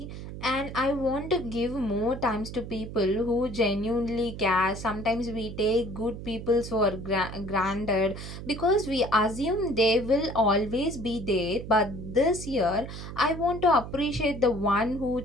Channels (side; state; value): right; noise; hum, 10 dB below the sound